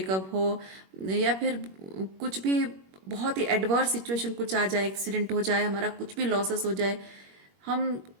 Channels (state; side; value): late; left; 21 ms